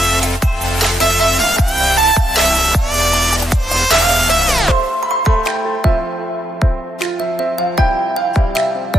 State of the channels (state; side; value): normal; both; correlation 0.80